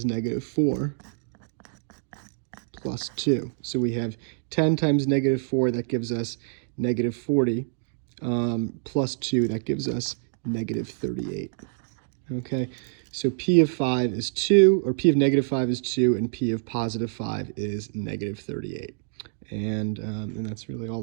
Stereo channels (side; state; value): left; silent; digital silence